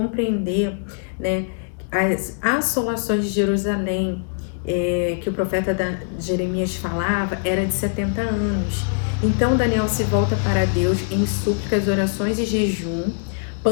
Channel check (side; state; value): right; silent; digital silence